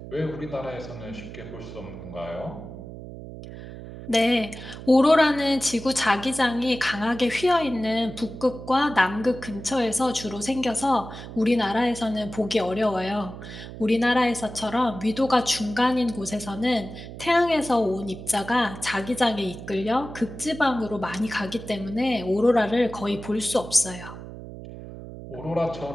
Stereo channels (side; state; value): right; noise; hum, 12 dB below the sound